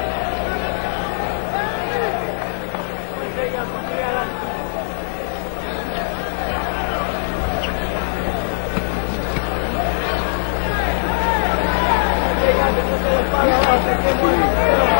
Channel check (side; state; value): right; silent; digital silence